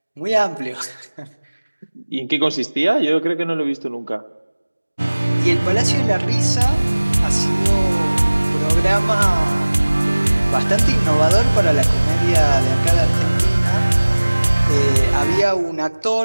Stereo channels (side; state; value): both; inverted; correlation -1.00